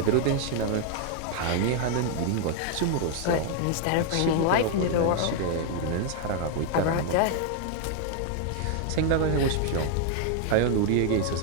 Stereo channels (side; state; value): both; different; correlation 0.00